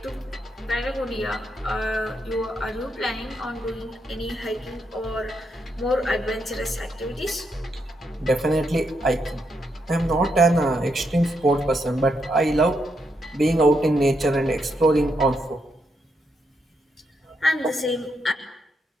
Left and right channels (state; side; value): normal; both; correlation 0.80